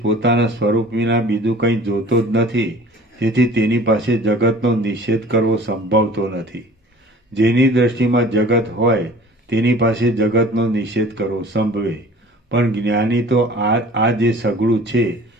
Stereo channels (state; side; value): normal; both; correlation 0.45